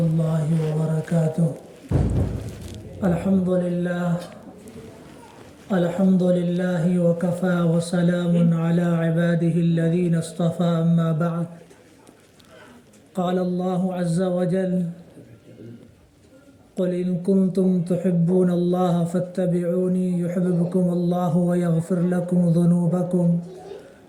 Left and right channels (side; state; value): both; identical; correlation 1.00